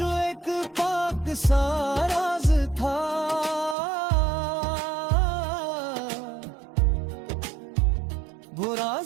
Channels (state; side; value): drops out; left; at 3.8 s